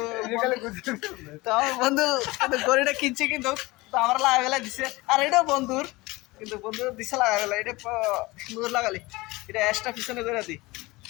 তো আমার বন্ধু ঘড়িটা কিনছে, কিন্তু আমার লাগাবেলা দিছে, আর এটাও বন্ধুর, কিন্তু বন্ধু দিছে লাগাবেলা, এটা সুন্দর লাগালি, এটা এক্সট্রা পিছনে করে দিই।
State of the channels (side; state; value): right; quieter; 21.9 dB